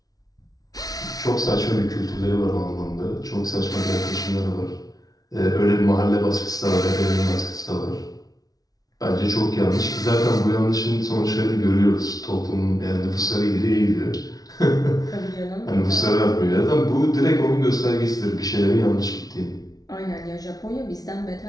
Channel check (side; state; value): right; late; 0.18 ms